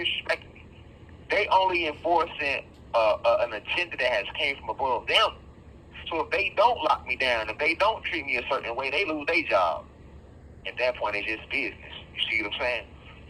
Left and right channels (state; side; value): identical; both; correlation 1.00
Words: me. They only enforcing an agenda that has came from above them. So if they don't lock me down, if they don't treat me a certain way, they lose their job. At that point, it's just business. You see what I'm saying?